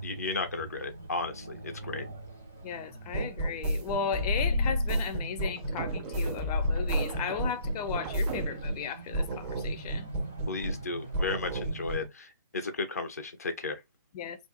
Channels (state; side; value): inverted; both; correlation -0.54